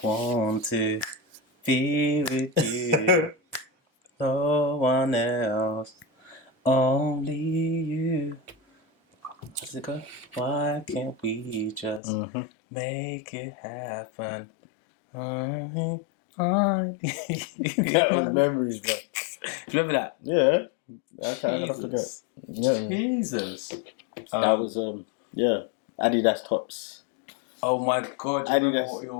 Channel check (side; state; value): right; drops out; at 12.0 s